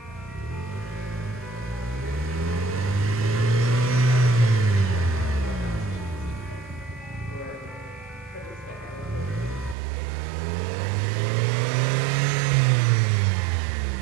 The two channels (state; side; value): drops out; left; at 9.8 s